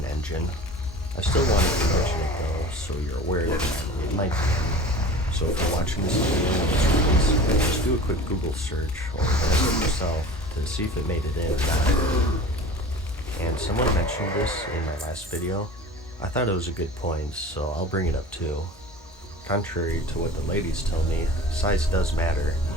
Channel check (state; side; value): normal; both; correlation 0.39